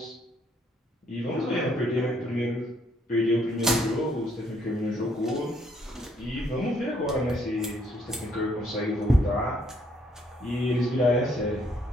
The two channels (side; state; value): both; normal; correlation 0.68